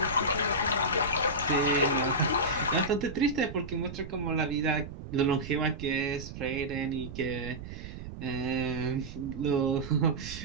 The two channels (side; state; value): right; noise; rumble, 11 dB below the sound